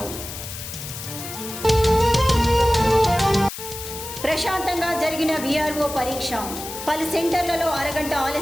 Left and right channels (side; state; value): left; noise; hiss, 10 dB below the sound